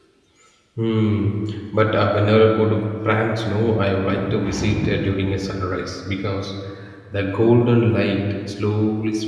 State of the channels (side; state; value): both; identical; correlation 1.00